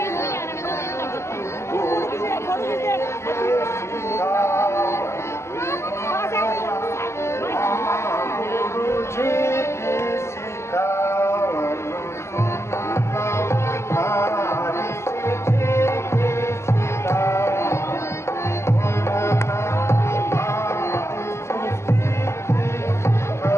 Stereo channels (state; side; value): late; right; 0.13 ms